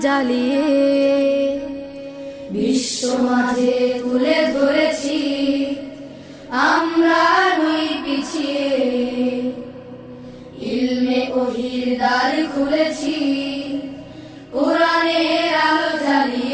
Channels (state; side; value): identical; both; correlation 1.00